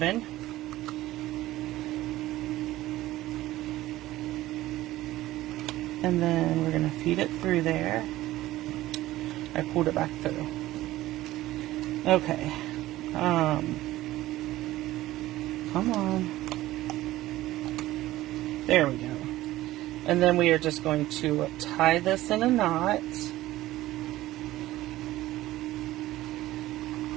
And then we're going to feed it through there. I pulled it back through. Okay. Come on. There we go. And then we are just going to tie this in a knot.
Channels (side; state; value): left; quieter; 16.1 dB